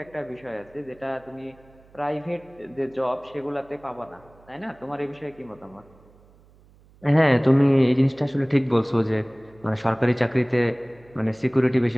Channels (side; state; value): right; noise; hum, 28 dB below the sound